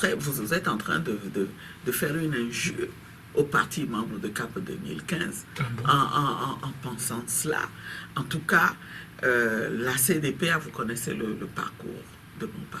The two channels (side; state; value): both; identical; correlation 1.00